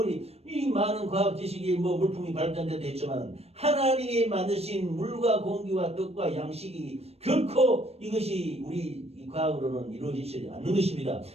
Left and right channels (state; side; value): late; left; 0.30 ms